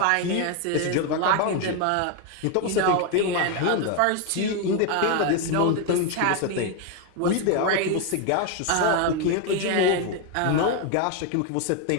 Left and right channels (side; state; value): both; different; correlation 0.01